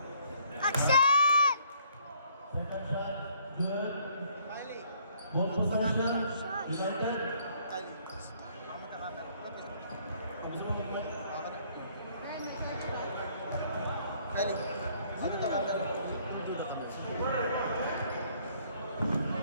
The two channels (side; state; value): both; inverted; correlation -0.63